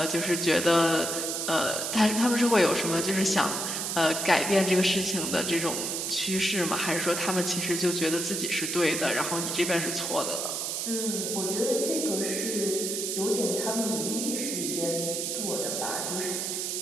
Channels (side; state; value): right; noise; hiss, 2 dB below the sound